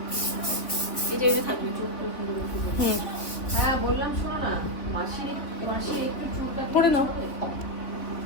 হ্যাঁ বললাম, শোনো না, মাসি মাসি একটু চুল কাটিয়ে পরে নাও।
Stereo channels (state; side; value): late; right; 3.6 ms